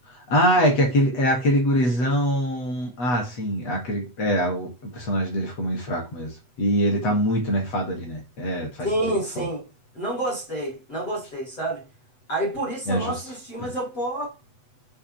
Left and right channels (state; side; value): late; right; 8.1 ms